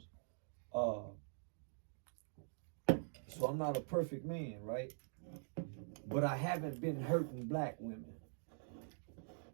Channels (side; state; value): left; silent; digital silence